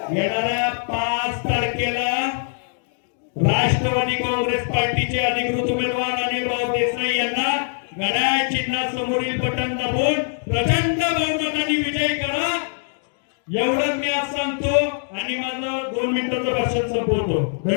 येणाऱ्या 5 तारखेला राष्ट्रवादी काँग्रेस पार्टीचे अधिकृत उमेदवार अनिल भाऊ देसाई यांना घड्याळ चिन्हासमोरील बटन दाबून प्रचंड बहुमताने विजयी करा. एवढंच मी आज सांगतो आणि माझं 2 मिनिटाचं भाषण संपवतो.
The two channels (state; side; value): silent; right; digital silence